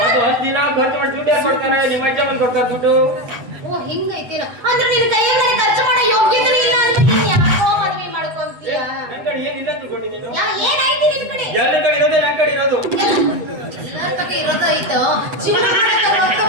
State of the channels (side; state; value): left; late; 8.0 ms